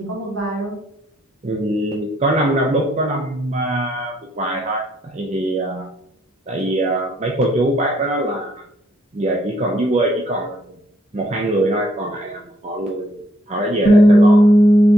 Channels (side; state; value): both; normal; correlation 0.70